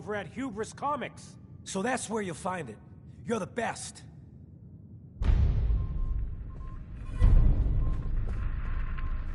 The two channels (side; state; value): both; identical; correlation 1.00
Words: at Hubris Comics. So that's where you'll find it. You're the best.